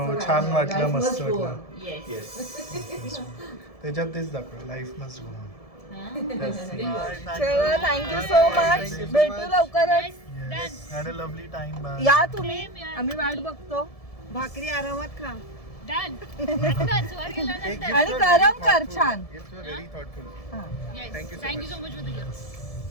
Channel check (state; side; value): late; right; 1.7 ms